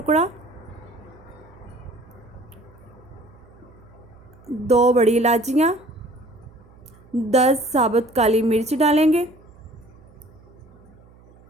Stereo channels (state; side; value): noise; right; hum, 25 dB below the sound